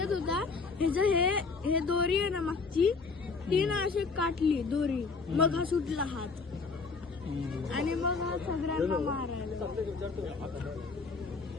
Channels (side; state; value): right; quieter; 4.5 dB